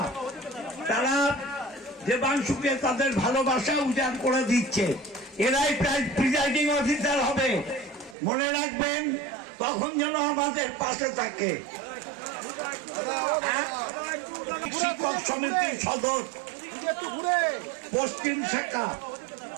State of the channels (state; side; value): drops out; left; at 8.2 s